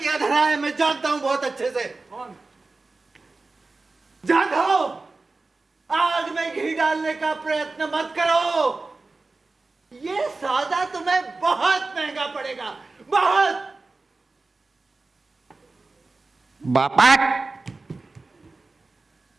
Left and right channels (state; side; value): quieter; left; 3.6 dB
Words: धरा है, मैं जानता हूँ बहुत अच्छे से। कौन? जाधव, आग में घी डालने का प्रयत्न मत करो। ये सौदा तुम्हें बहुत महंगा पड़ेगा, बहुत। बापट,